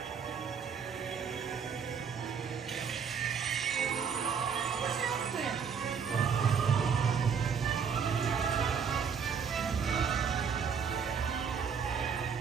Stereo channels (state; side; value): quieter; left; 6.6 dB